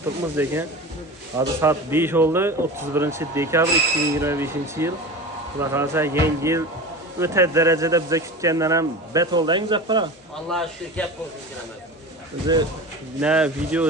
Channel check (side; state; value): both; normal; correlation 0.31